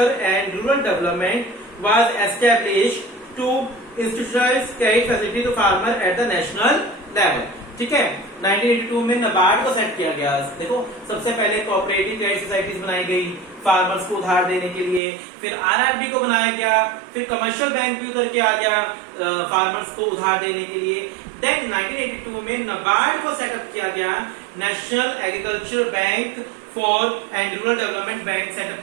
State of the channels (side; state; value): left; drops out; at 15.0 s